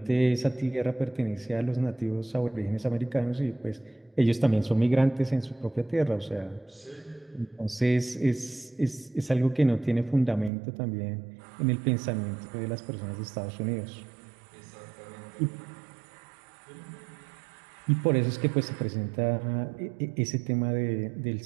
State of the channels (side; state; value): left; drops out; at 10.5 s